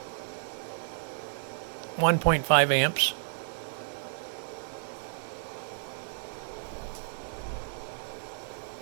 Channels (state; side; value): silent; left; digital silence